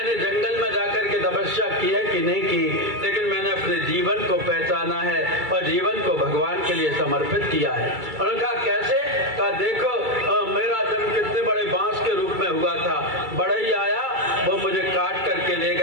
जंगल में जाकर के तपस्या की है कि नहीं की, लेकिन मैंने अपने जीवन को पहचाना है और जीवन को भगवान के लिए समर्पित किया है। उन्होंने कहा कैसे? कहा देखो, मेरा जन्म कितने बड़े बांस के रूप में हुआ था, बढ़ई आया, वो मुझे काट करके ले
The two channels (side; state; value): left; late; 2.3 ms